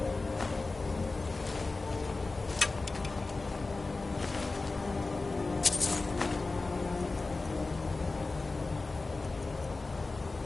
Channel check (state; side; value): quieter; right; 3.5 dB